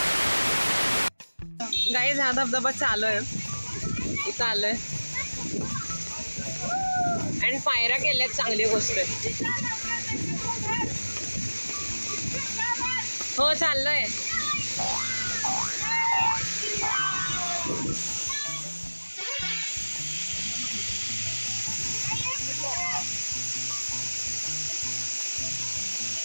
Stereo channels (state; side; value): inverted; both; correlation -1.00